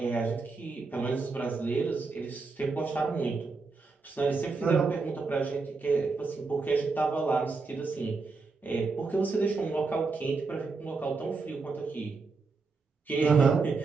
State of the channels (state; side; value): quieter; left; 4.2 dB